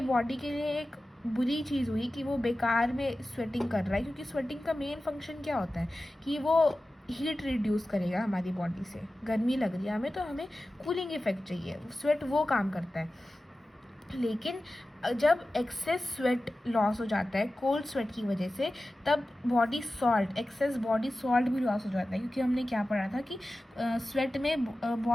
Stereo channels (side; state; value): both; normal; correlation 0.95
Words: बॉडी के लिए एक बुरी चीज़ हुई कि वो बेकार में स्वेटिंग कर रहा है, क्योंकि स्वेटिंग का मेन फंक्शन क्या होता है कि वो हीट रिड्यूस करेगा हमारी बॉडी से। गर्मी लग रही है हमें तो हमें कूलिंग इफेक्ट चाहिए, स्वेट वो काम करता है। लेकिन जब एक्सेस स्वेट लॉस हो जाता है कोल्ड स्वेट की वजह से, तब body salt, access body salt भी लॉस हो जाता है, क्योंकि हमने क्या पढ़ा था कि स्वेट में